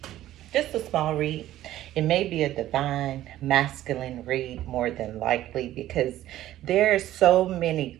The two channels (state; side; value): quieter; left; 13.8 dB